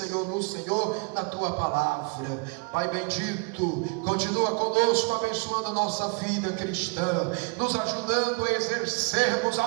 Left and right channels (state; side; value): quieter; left; 32.8 dB